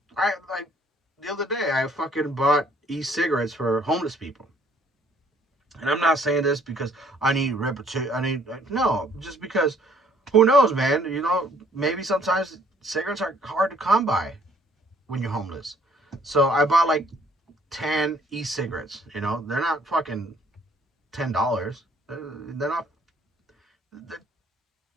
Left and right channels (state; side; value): normal; both; correlation 0.61